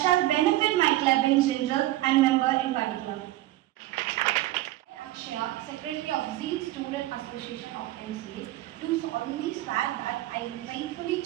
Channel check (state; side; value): quieter; left; 16.2 dB